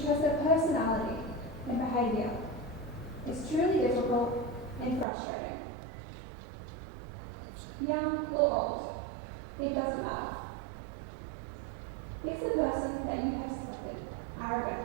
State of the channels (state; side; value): drops out; left; at 5.1 s